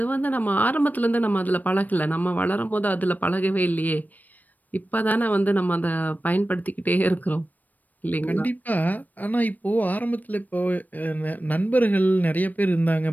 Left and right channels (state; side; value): late; right; 0.083 ms